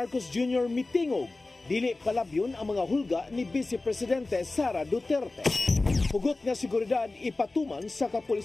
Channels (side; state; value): right; quieter; 3.2 dB